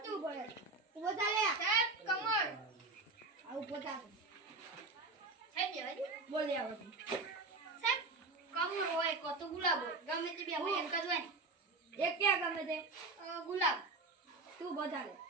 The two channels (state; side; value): quieter; left; 3.5 dB